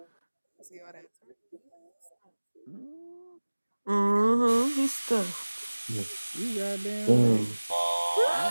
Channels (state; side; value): inverted; both; correlation -1.00